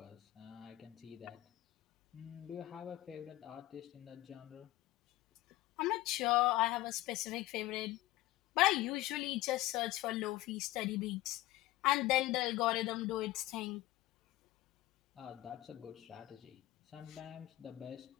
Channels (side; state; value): right; quieter; 16.5 dB